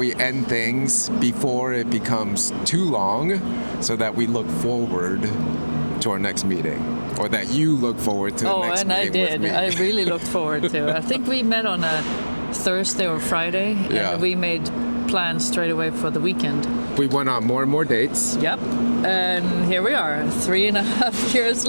end things before it becomes too long so that we look forward to our next meeting, or that you look forward to the Oh, next and I meeting did. with me. I really looked forward to it. I think we met on a Thursday or Friday, Yeah. and we made plans straight away for the weekend. We went on more and more dates. Yep. And here we are, 3.5 years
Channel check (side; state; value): both; inverted; correlation -1.00